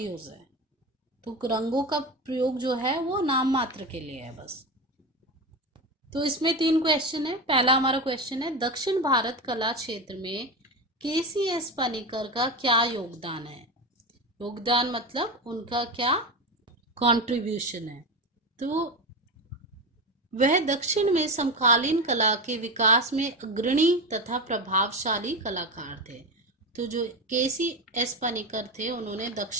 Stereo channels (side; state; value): both; normal; correlation 0.20